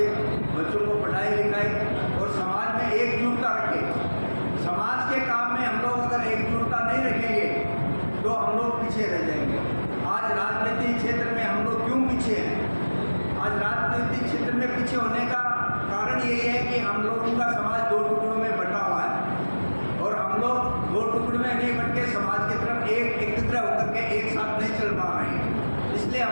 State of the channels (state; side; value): inverted; both; correlation -1.00